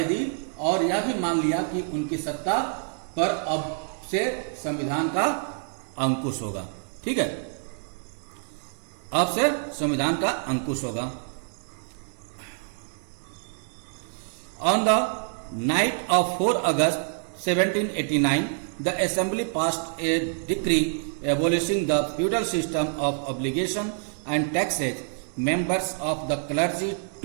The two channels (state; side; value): silent; left; 56 dB below the other